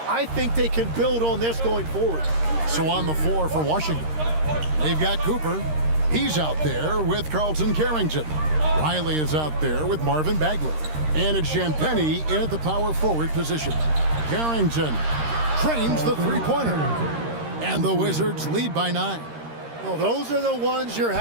I think they can build on this going forward. So on the floor for Washington, they've got Cooper. He's out there with Carlton Carrington. Riley is out there with Marvin Bagley. And it's Champagnie in at the power forward position. Carrington trains the three-pointer. And the Wizards lead by 9. Well, those are the ones you're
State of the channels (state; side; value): late; left; 13 ms